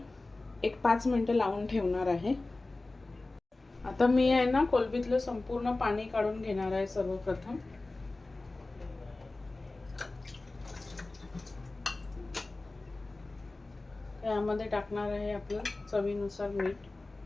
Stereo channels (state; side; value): quieter; right; 3.1 dB